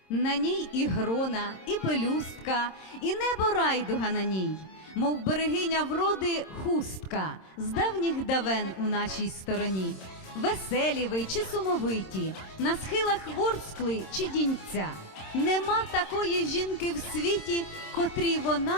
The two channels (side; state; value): right; late; 26 ms